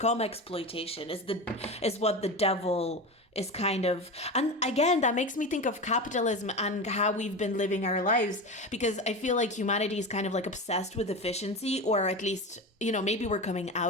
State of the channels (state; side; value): normal; both; correlation 0.25